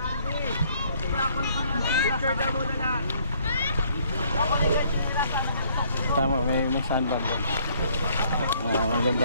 Tama, may sandbag doon.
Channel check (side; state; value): both; inverted; correlation -0.64